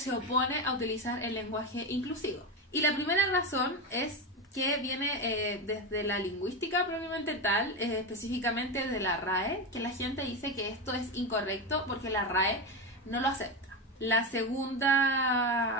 opone a utilizar el lenguaje inclusivo. Y la primera razón es que viene desde la lingüística propiamente tal, específicamente de la RAE, que la gente dice que esto es incorrecto porque la RAE no lo acepta. La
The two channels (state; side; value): normal; both; correlation 0.15